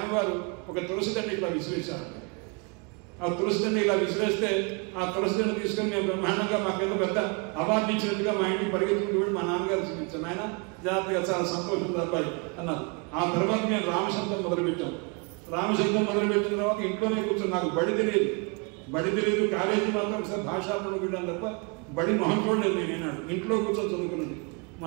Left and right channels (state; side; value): quieter; left; 32.1 dB